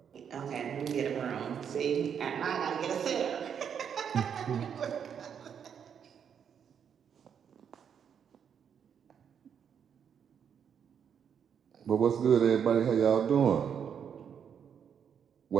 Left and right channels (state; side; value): quieter; left; 7.8 dB